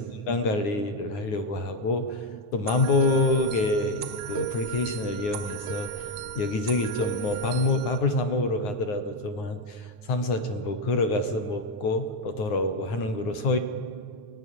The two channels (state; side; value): late; right; 9.7 ms